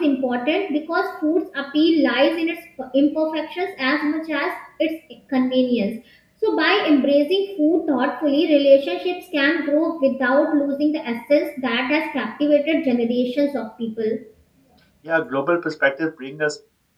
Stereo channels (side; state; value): both; identical; correlation 1.00